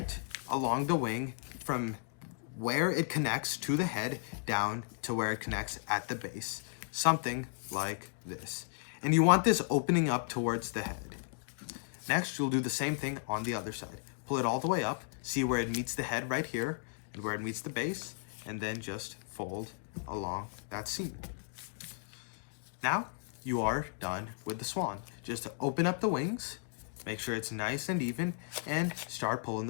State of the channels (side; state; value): right; silent; digital silence